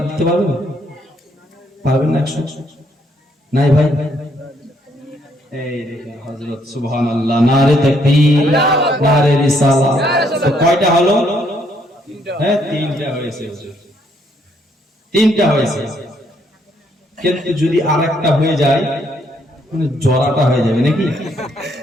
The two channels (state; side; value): normal; both; correlation 0.70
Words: পারবেন? পারবেন না 100? নাই ভাই? এই দেখেন হযরত সুবহানাল্লাহ, নারে তাকবীর, নারে রিসালাত। তো কয়টা হলো? হ্যাঁ, তিনটা হয়েছে, তিনটা হয়েছে। কিন্তু যদি আরেকটা হয়ে যায় মানে জড়াটা হয়ে যাবে নাকি?